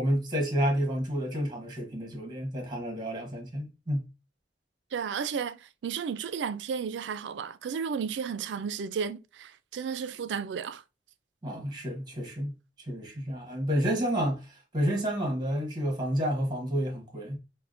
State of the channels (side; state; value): both; normal; correlation 0.55